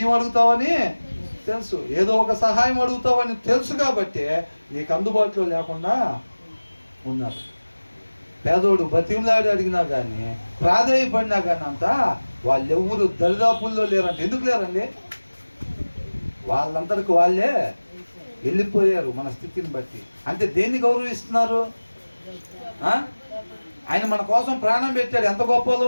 అడుగుతావని తెలుసు, ఏదో ఒక సహాయం అడుగుతావని తెలుసు. కాబట్టి నీకు అందుబాటులో లేకుండా ఉన్నారు. పేదోడు బతిమలాడి అడిగినా కానీ, ప్రాధాయపడినా కానీ అంతా వాళ్ళెవ్వరు దరిదాపుల్లో లేరంట. ఎందుకు లేరండి? వాళ్ళందరికి వాళ్ళే వెళ్ళిపోయారు మన స్థితిని బట్టి. అంటే దేన్ని గౌరవిస్తున్నారు? ఆయన మన కోసం ప్రాణం పెట్టాడు. ఎంత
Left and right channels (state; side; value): inverted; both; correlation -1.00